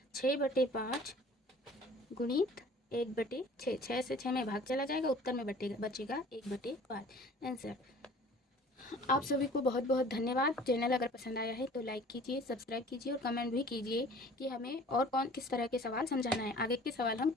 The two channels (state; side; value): normal; both; correlation 0.49